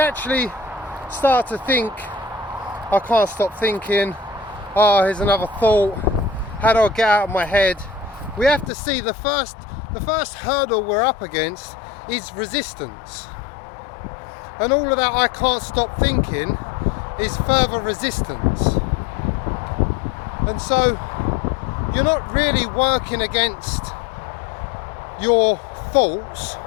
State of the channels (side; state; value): right; drops out; at 8.7 s